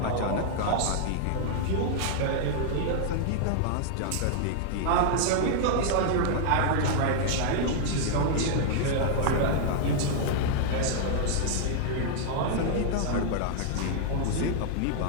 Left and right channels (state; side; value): different; both; correlation -0.01